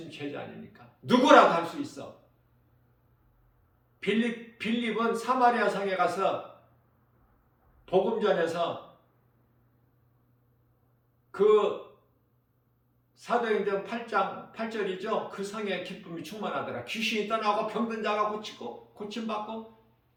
제자 아닙니까? 누구라도 할 수 있어. 빌립은 사마리아 성에 가서 복음 전해서 그 사도행전 8장 8절이죠. 그 성에 기쁨이 충만하더라. 귀신이 떠나고 병든 자가 고침받고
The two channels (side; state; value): both; identical; correlation 1.00